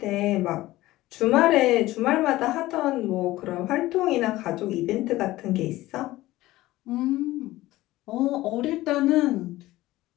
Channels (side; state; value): right; quieter; 17.2 dB